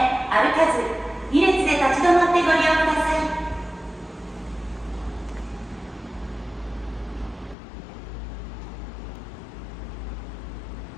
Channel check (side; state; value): right; drops out; at 7.6 s